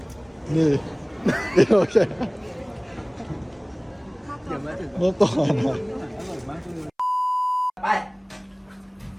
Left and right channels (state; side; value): identical; both; correlation 1.00